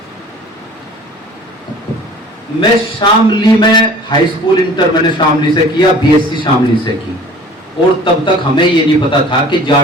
मैं शामली में हाई स्कूल इंटर मैंने शामली से किया, बीएससी शामली से की, और तब तक हमें ये नहीं पता था कि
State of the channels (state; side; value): normal; both; correlation 0.47